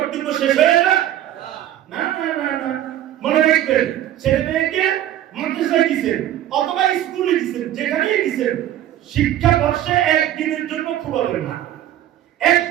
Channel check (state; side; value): quieter; left; 12.4 dB